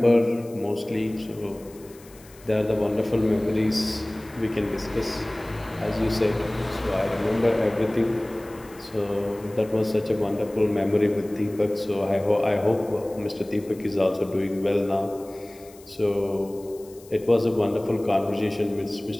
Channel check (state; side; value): noise; left; hiss, 24 dB below the sound